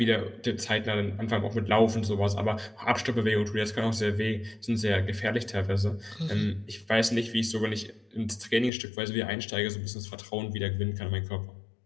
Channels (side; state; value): right; drops out; at 8.7 s